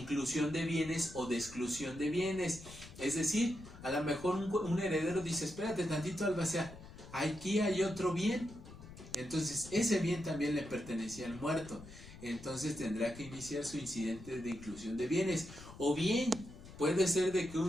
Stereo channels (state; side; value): noise; left; rumble, 16 dB below the sound